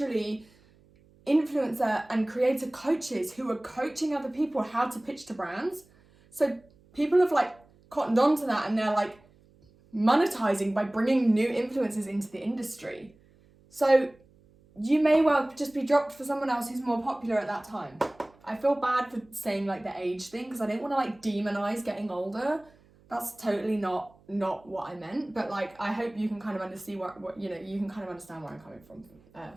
influencer and creator coaches who are coaching other people how to pitch to brands. So people have like cottoned on to that and they're like monetizing by bringing new influencers into the industry. So you may well just be dropped for someone else who's more popular at that time. I feel bad for saying like the age thing because I didn't want to like demonize getting older. That's totally not what I meant. But like, I hope you can kind of understand what you know, you can kind of understand where I'm coming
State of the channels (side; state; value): right; noise; hum, 29 dB below the sound